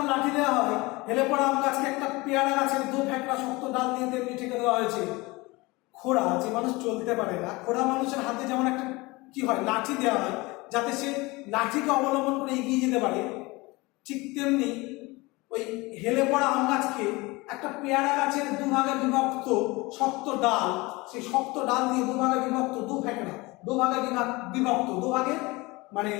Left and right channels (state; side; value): quieter; right; 23.3 dB